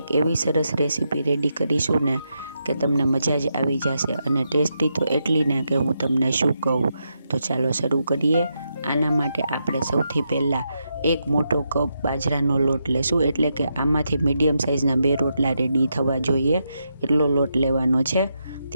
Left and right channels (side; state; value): both; inverted; correlation -0.83